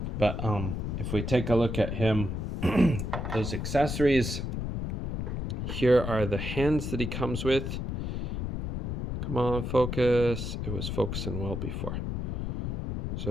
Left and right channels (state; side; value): noise; left; rumble, 3 dB below the sound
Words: But if we take a look at him, those accessories, here are the hands that he comes with. Come on, focus. It was focusing well before.